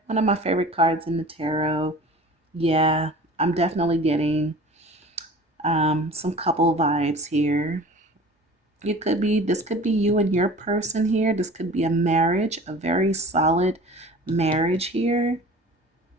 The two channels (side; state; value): both; normal; correlation 0.42